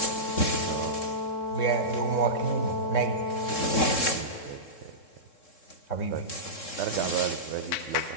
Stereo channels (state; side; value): late; right; 3.7 ms